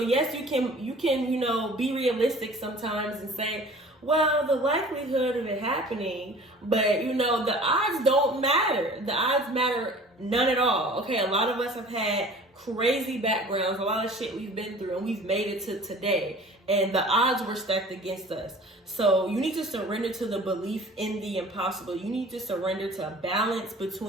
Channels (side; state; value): both; normal; correlation 0.45